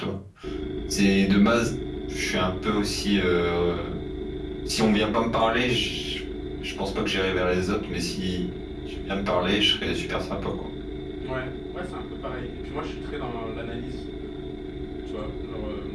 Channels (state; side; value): identical; both; correlation 1.00